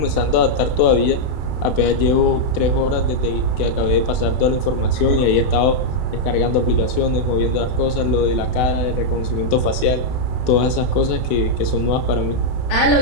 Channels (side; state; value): right; late; 32 ms